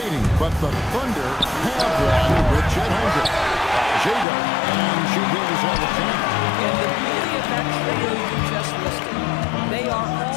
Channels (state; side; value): drops out; right; at 4.2 s